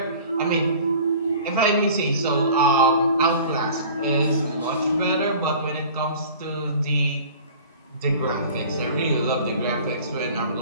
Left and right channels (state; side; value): inverted; both; correlation -0.43